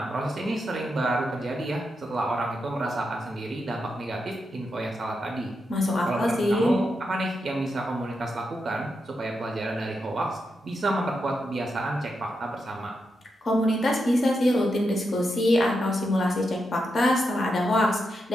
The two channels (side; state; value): both; normal; correlation 0.85